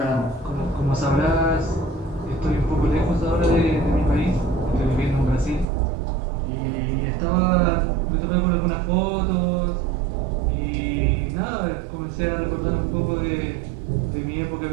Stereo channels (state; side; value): drops out; left; at 5.7 s